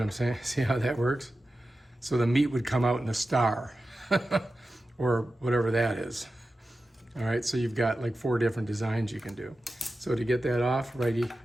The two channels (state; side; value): normal; both; correlation 0.93